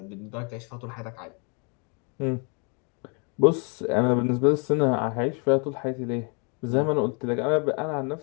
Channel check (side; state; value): right; quieter; 34.7 dB